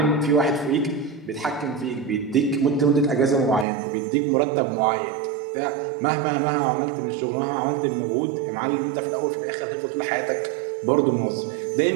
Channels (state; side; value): drops out; left; at 3.7 s